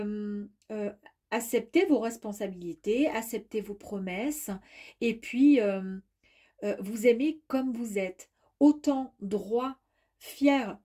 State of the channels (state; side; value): identical; both; correlation 1.00